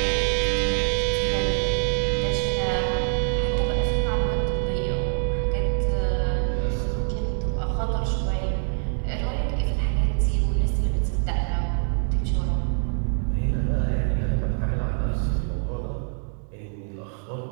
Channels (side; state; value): left; silent; 58 dB below the other